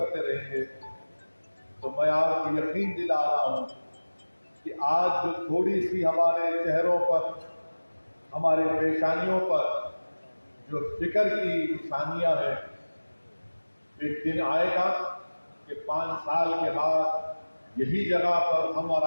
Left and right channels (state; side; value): inverted; both; correlation -1.00